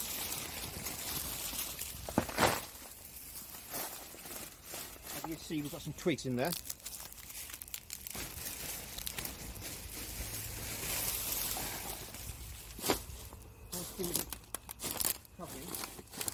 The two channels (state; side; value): identical; both; correlation 1.00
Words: As you can see, we've got some twigs in there. Give it a covering,